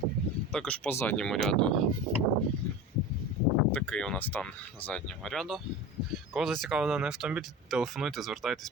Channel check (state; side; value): normal; both; correlation 0.31